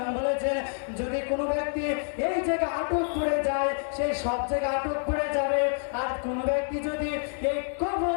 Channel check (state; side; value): silent; right; digital silence